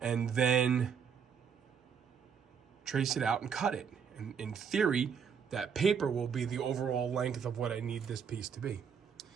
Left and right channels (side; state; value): left; quieter; 7.0 dB